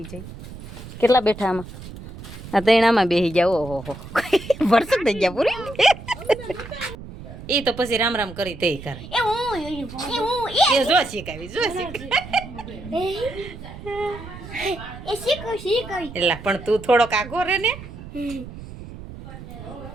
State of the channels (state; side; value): noise; right; rumble, 13 dB below the sound